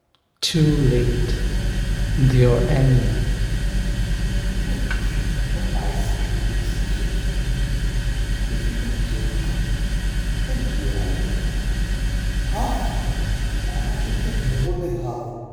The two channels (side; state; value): both; identical; correlation 1.00